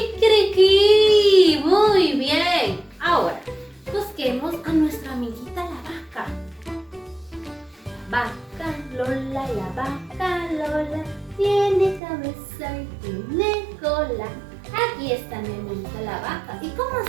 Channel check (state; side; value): drops out; left; at 12.0 s